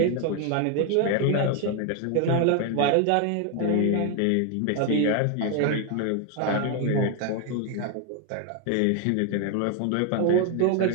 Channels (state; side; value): different; both; correlation 0.01